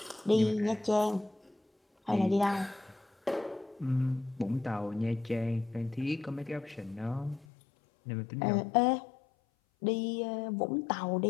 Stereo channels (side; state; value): right; drops out; at 7.5 s